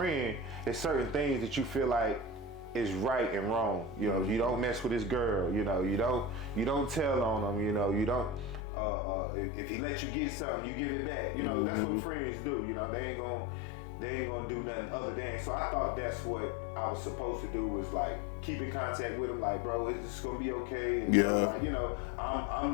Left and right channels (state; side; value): drops out; right; at 8.6 s